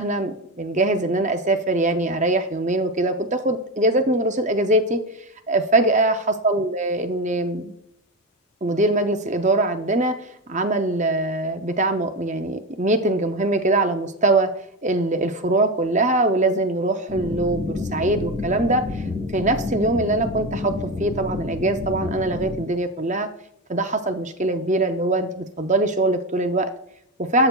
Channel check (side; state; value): both; normal; correlation 0.17